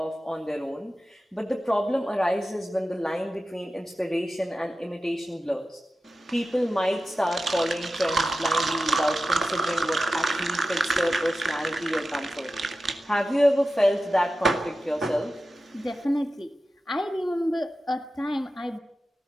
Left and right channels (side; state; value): both; normal; correlation 0.93